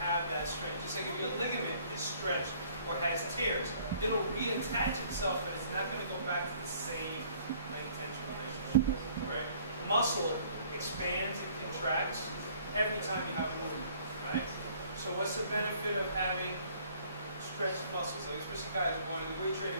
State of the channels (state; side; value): inverted; both; correlation -0.58